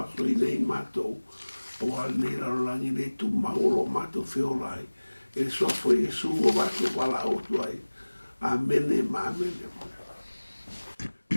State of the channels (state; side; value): inverted; both; correlation -1.00